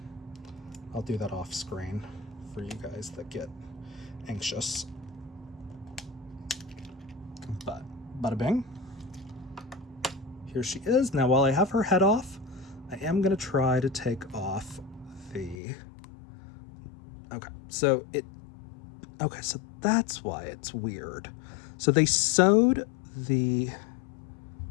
I'll do that off screen for you guys that get anxious. But bada bing. Here she is. Now while I have her head off, I am gonna try to take off the, okay, so that's why it's weird. So they sewed the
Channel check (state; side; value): drops out; right; at 15.6 s